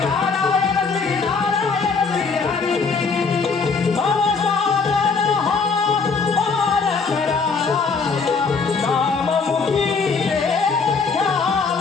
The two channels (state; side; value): quieter; right; 4.9 dB